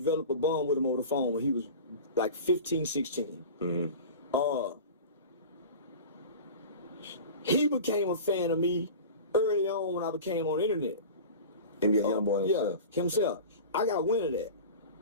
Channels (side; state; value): both; inverted; correlation -0.34